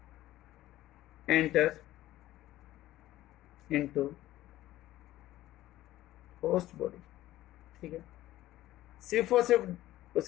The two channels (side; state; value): right; quieter; 15.2 dB